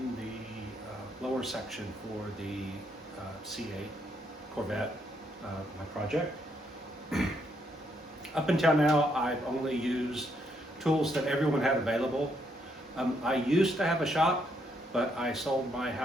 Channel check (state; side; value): normal; both; correlation 0.74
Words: the lower section for the C8 Corvette, my project. Up until now, I've only used tools that everyone had available. I used to have a shop, but I sold my